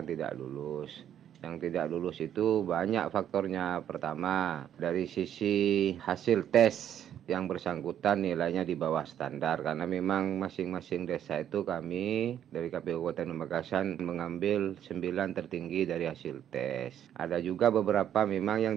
tidak lulus. Yang tidak lulus itu banyak faktornya. Pertama, dari sisi hasil tes yang bersangkutan nilainya di bawah standar, karena memang masing-masing desa itu kami dari KPU Kabupaten Pamekasan mengambil 9 tertinggi dari hasil tes. Ada juga beberapa memang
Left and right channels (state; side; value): quieter; left; 10.3 dB